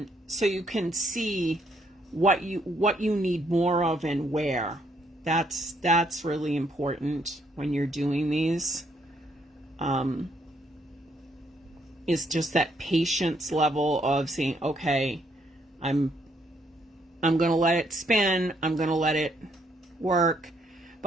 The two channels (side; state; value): both; normal; correlation 0.71